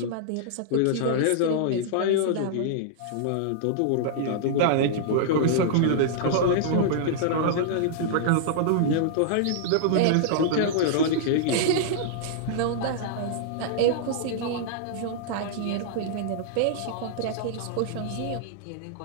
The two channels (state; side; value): different; both; correlation -0.01